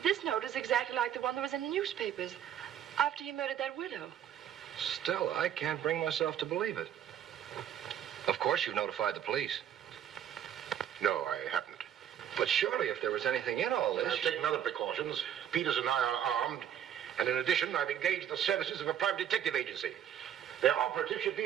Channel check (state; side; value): quieter; left; 10.0 dB